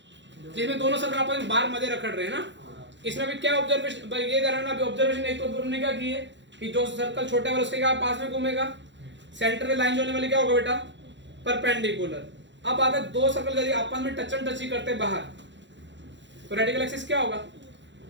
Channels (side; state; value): left; late; 0.53 ms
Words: जिसमें दोनों सर्कल आपस में बार मध्य रखड़ रहे हैं ना? इसमें भी क्या ऑब्जर्वेशन भाई ये करना अभी ऑब्जर्वेशन एक तो हमने क्या की है कि जो सर्कल छोटे वाला उसके क्या पास में घूमेगा, सेंटर में लाइन जोड़ने वाली क्या होगा बेटा परपेंडिकुलर। अब अगर दो सर्कल यदि आपस में टची करते हैं बाहर तो रेडिकल एक्सिस क्या होगा?